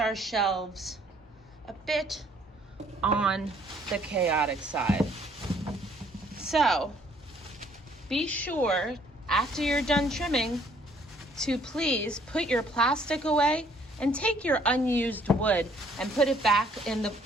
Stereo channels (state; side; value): normal; both; correlation 0.63